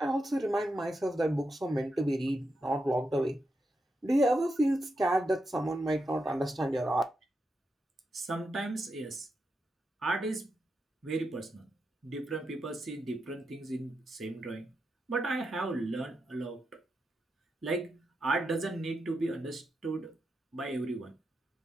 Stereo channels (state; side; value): normal; both; correlation 0.86